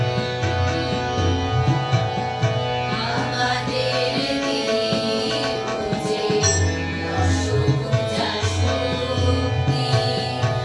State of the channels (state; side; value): identical; both; correlation 1.00